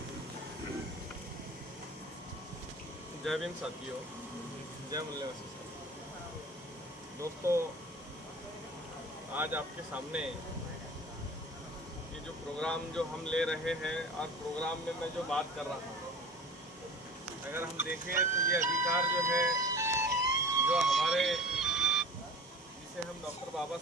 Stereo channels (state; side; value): normal; both; correlation 0.39